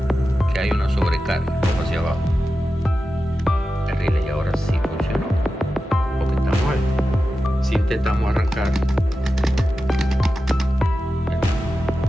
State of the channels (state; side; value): normal; both; correlation 0.92